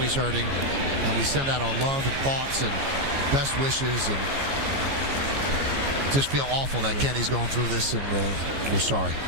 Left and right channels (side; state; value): left; late; 15 ms